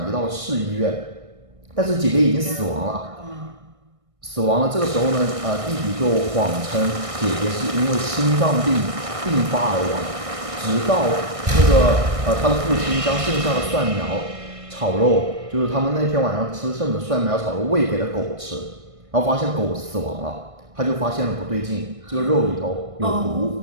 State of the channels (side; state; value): left; late; 1.6 ms